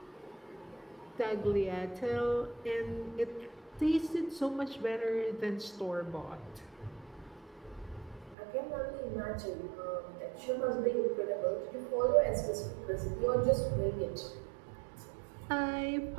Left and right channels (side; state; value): left; drops out; at 8.3 s